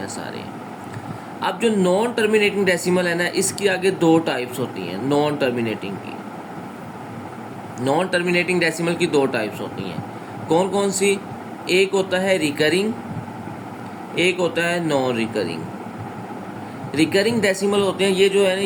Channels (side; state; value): both; identical; correlation 1.00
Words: हैं सारे। अब जो नॉन टर्मिनेटिंग डेसिमल है ना, इसकी आगे 2 टाइप्स होती हैं नॉन टर्मिनेटिंग की। नॉन टर्मिनेटिंग डेसिमल की 2 टाइप्स होती हैं। कौन कौन सी? एक होता है रिकरिंग, एक होता है नॉन रिकरिंग। रिकरिंग डेसिमल होते हैं, ये जो है ना,